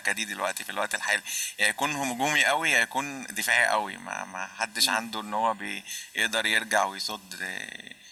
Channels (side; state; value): both; identical; correlation 1.00